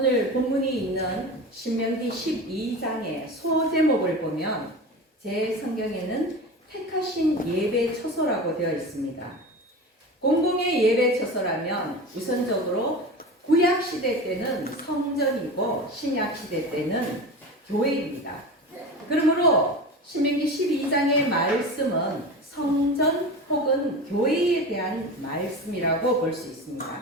본문이 있는 신명기 12장의 소제목을 보면 제 성경에는 택하신 예배 처소라고 되어 있습니다. 공공의 예배 처소라면 우선적으로 구약 시대 때는 성전이고 신약 시대 때는 교회입니다. 그러므로 신명기 12장의 말씀은 성전 혹은 교회에 대한 말씀이라고 볼 수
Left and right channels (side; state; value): both; normal; correlation 0.29